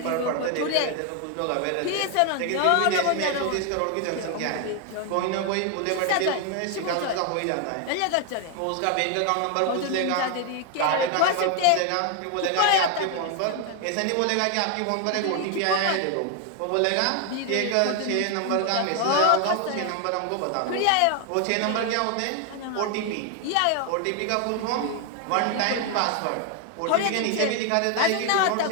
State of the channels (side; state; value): both; different; correlation 0.01